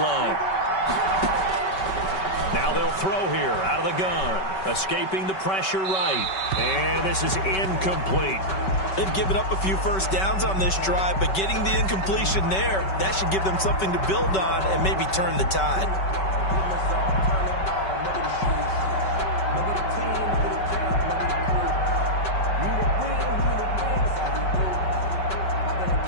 line. Now they'll throw here out of the gun. Escaping the pressure right. And this is incomplete. They've given up a few first downs on this drive, but getting the incompletion there, that should give them something to build on and maybe turn the tide.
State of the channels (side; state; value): right; late; 5.3 ms